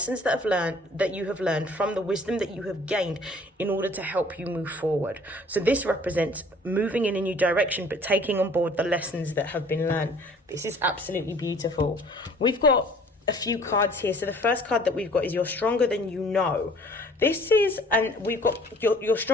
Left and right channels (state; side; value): normal; both; correlation 0.53